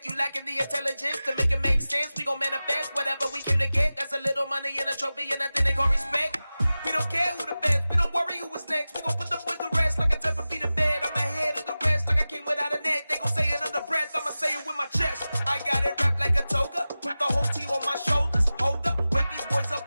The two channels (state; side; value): inverted; both; correlation -0.96